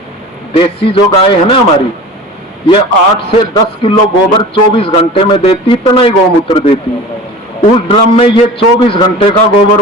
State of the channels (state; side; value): normal; both; correlation 0.37